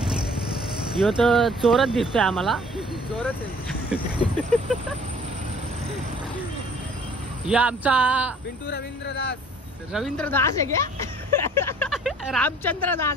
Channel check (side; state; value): both; normal; correlation 0.54